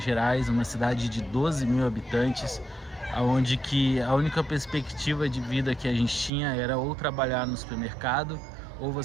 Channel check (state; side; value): drops out; left; at 6.3 s